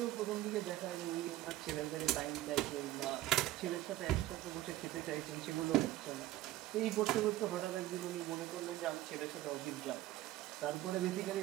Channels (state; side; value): quieter; left; 15.5 dB